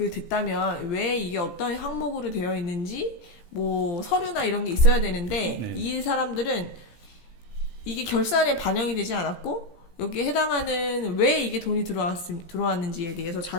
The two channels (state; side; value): late; right; 17 ms